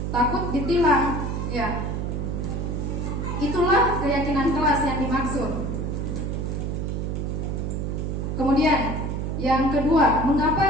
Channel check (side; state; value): right; noise; hum, 2 dB below the sound